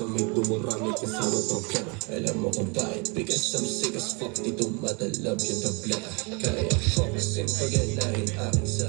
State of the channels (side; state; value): left; quieter; 31.4 dB